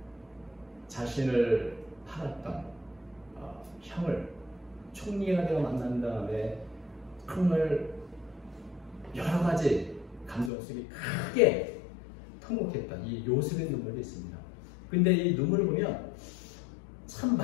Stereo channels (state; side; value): drops out; right; at 10.5 s